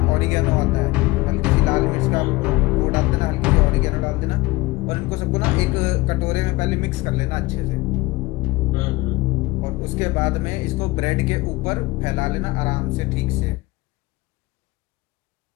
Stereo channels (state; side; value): quieter; right; 21.3 dB